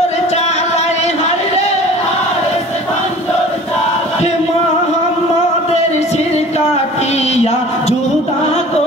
চালায়, হাইরে হারেস খঞ্জর চালায়। মোহাম্মদের শির কাটিয়া জুদা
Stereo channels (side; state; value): both; normal; correlation 0.44